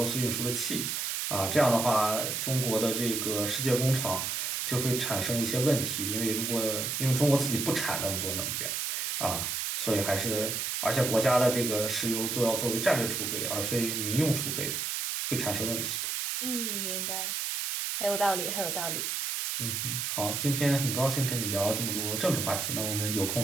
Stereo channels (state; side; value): noise; right; hiss, 1 dB below the sound